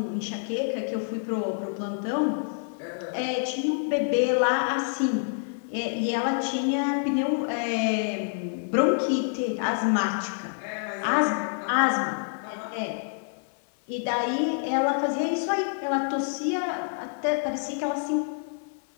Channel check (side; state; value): right; silent; digital silence